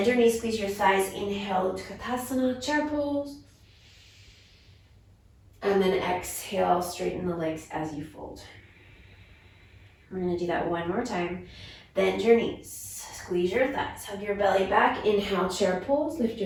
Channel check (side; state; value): both; identical; correlation 1.00